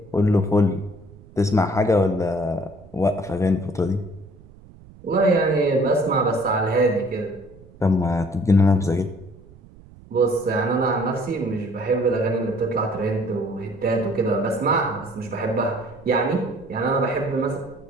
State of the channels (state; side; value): noise; right; rumble, 22 dB below the sound